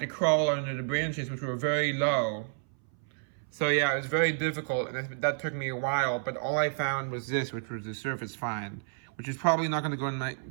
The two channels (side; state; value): left; silent; 58 dB below the other